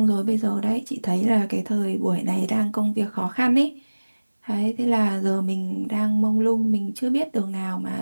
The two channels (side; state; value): both; inverted; correlation -1.00